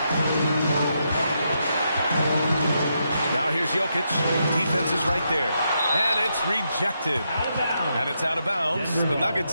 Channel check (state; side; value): inverted; both; correlation -0.81